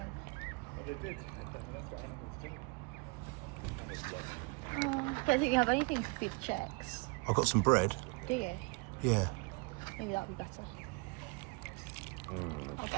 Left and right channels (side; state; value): left; quieter; 28.7 dB